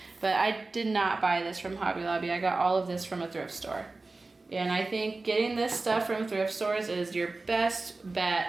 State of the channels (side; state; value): left; quieter; 3.4 dB